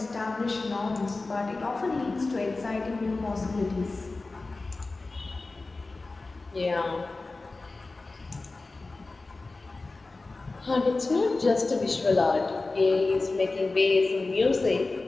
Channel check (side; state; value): right; quieter; 3.4 dB